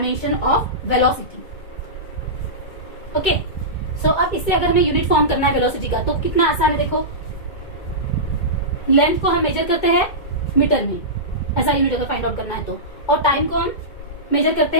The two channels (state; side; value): late; right; 2.2 ms